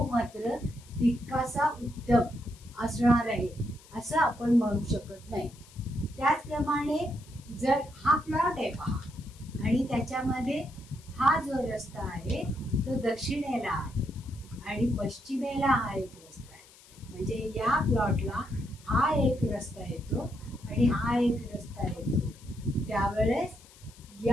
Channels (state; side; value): noise; left; hiss, 24 dB below the sound